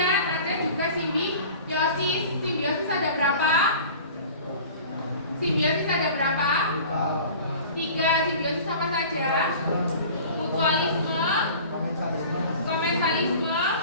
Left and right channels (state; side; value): inverted; both; correlation -0.42